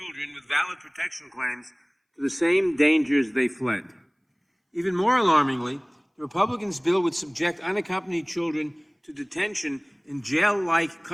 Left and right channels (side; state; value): both; identical; correlation 1.00